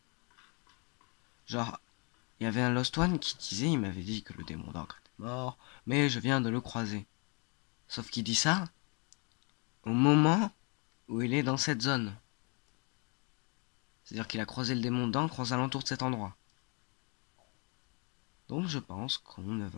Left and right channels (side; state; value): right; quieter; 33.2 dB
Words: Genre, il y avait un Lost One qui disait, il m'avait dit que le démon d'encre était mort, mais je viens de le croiser. Sauf qu'il dit ça au moment où il est dans cette zone. C'est-à-dire qu'il a croisé le démon d'encre aux alentours de cet endroit. Donc je pense qu'on ne